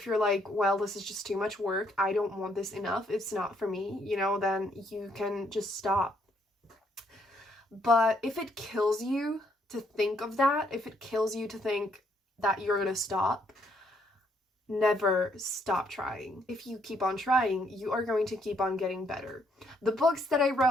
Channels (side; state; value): both; normal; correlation 0.71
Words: you're like, well, this is just too much work, I don't want this enough, it's not for me, you know, then you can just stop. But if it kills you to think of that, if it kills you to think that you're gonna stop, never stop trying. If you keep on trying, you are going to keep on getting better. The books that I